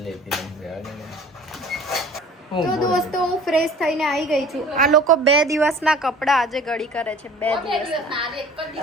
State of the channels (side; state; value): both; normal; correlation 0.46